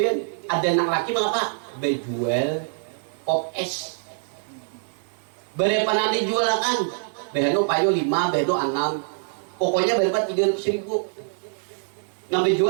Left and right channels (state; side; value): silent; left; digital silence